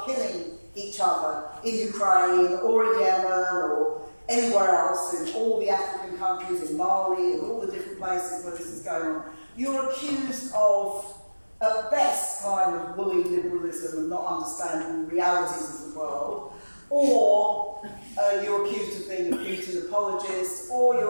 killing each other in Ukraine or in Yemen or anywhere else, in all the African countries, in Mali and all the different places where this is going on, you're accused of, at best, kind of woolly liberalism and not understanding the realities of the world, or you're accused of being a Putin apologist, or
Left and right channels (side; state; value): both; inverted; correlation -1.00